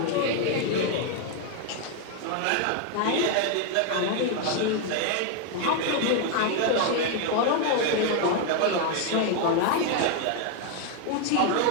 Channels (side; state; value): both; different; correlation 0.01